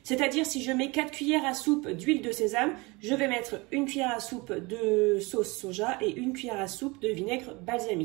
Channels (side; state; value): left; quieter; 25.3 dB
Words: C'est-à-dire si je mets 4 cuillères à soupe d'huile de sésame, je vais mettre une cuillère à soupe de sauce soja et une cuillère à soupe de vinaigre